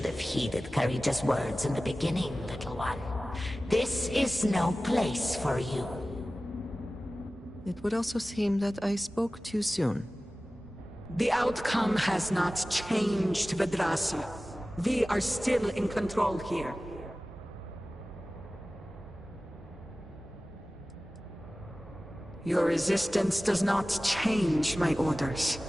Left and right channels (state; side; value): normal; both; correlation 0.96